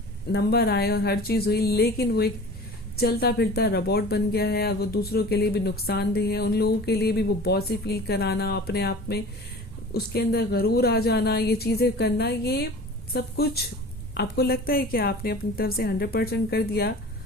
नंबर आए और हर चीज हुई, लेकिन वो एक चलता फिरता रोबोट बन गया है और वो दूसरों के लिए भी नुकसानदेह है। उन लोगों के लिए भी वो बॉसी फील कराना, अपने आप में उसके अंदर गरूर आ जाना, ये चीजें करना, ये सब कुछ आपको लगता है कि आपने अपनी तरफ से 100% कर दिया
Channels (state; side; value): normal; both; correlation 0.40